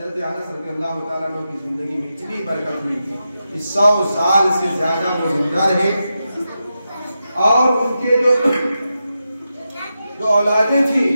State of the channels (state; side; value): inverted; both; correlation -0.89